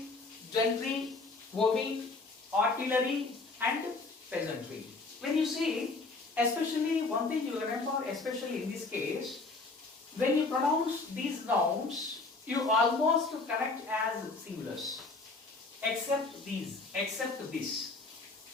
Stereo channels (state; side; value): quieter; right; 3.6 dB